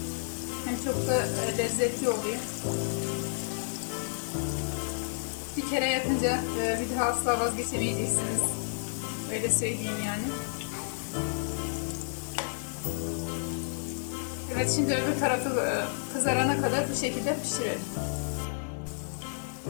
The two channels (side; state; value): right; silent; digital silence